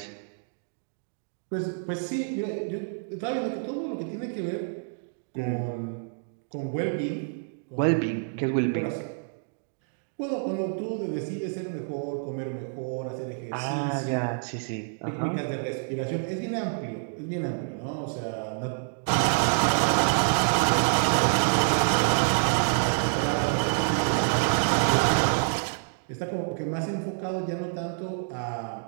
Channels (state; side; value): silent; left; digital silence